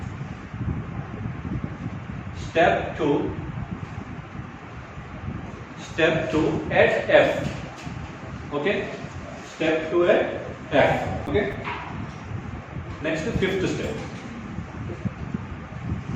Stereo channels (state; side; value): identical; both; correlation 1.00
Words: step 2 at F. Okay, step 2 at F. Okay, next to fifth step.